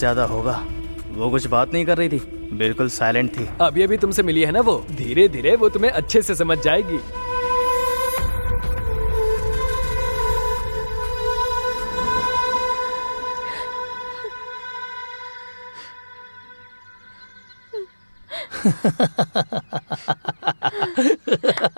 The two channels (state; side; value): inverted; both; correlation -1.00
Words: होगा। वो कुछ बात नहीं कर रही थी, बिल्कुल साइलेंट थी। अभी अभी तुमसे मिली है ना वो, धीरे धीरे वो तुम्हें अच्छे से समझ जाएगी।